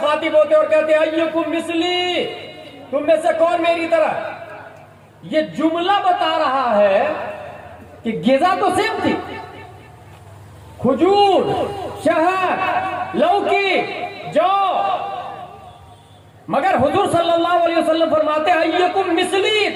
ہوتے اور کہتے ایکم مثلی، تم میں سے کون میری طرح. یہ جملہ بتا رہا ہے کہ غذا تو سیم تھی، کھجور، شہد، لوکی، جو، مگر حضور صلی اللہ علیہ وسلم فرماتے ہیں ایکم مثلی،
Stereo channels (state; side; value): identical; both; correlation 1.00